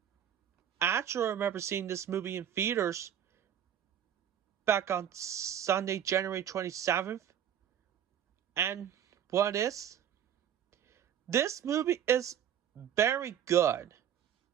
actually remember seeing this movie in theaters back on Sunday, January 27th. And what is? This movie is very good.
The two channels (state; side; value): quieter; left; 9.6 dB